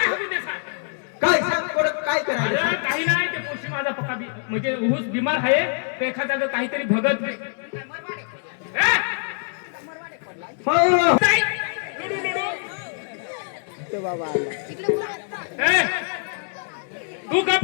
हवी ते सांग काय सांग कोण काय करायचं अरे काही नाही ते पोशी माझा पक्का म्हणजे ऊस बिमार आहे ते एखाद्या काहीतरी भगत ए! नाही. ए! तू गप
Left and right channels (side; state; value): right; silent; 57 dB below the other